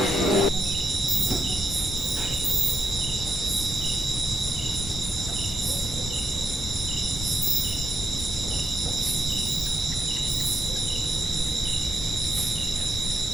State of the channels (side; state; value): both; normal; correlation 0.82